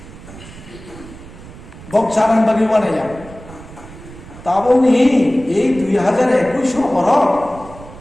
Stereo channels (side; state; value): right; noise; rumble, 17 dB below the sound